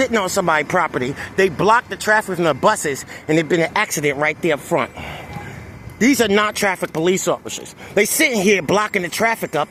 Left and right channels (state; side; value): identical; both; correlation 1.00